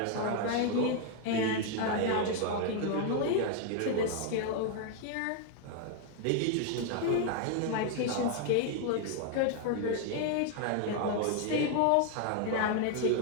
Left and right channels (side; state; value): both; different; correlation 0.00